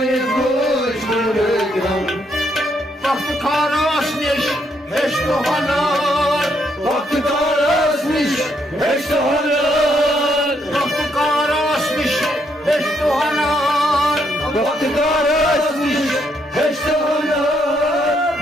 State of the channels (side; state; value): both; normal; correlation 0.74